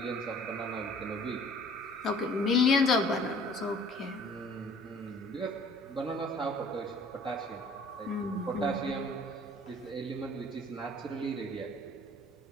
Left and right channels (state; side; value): normal; both; correlation 0.52